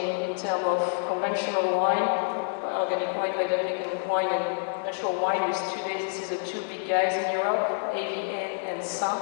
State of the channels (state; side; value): silent; right; digital silence